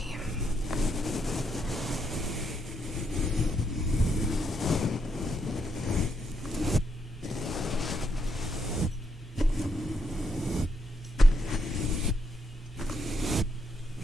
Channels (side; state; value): both; normal; correlation 0.78